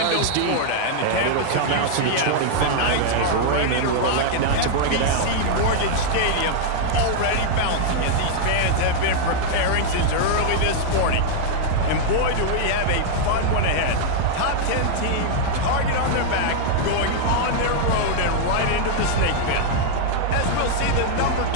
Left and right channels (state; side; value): different; both; correlation -0.01